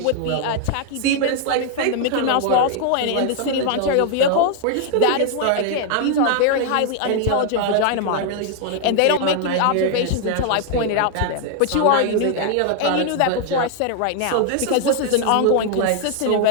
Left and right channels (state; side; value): different; both; correlation 0.00